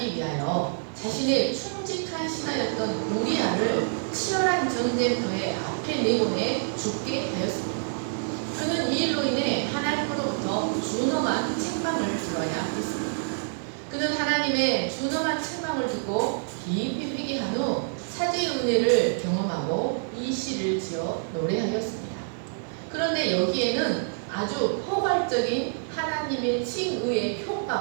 위하여 자신의 충직한 신하였던 우리아를 치열한 전쟁터에 앞에 내보내 죽게 하였습니다. 그는 이 일로 인해 하나님으로부터 준엄한 책망을 들어야 했습니다. 그는 하나님의 준엄한 책망을 듣고 깊이 회개한 후 사죄의 은혜를 경험하고 이 시를 지어 노래하였습니다. 그런데 여기에는 아주 포괄적인 하나님의 칭의의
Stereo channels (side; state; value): left; silent; digital silence